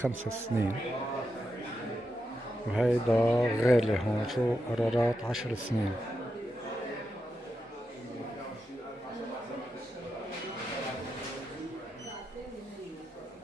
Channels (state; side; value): normal; both; correlation 0.86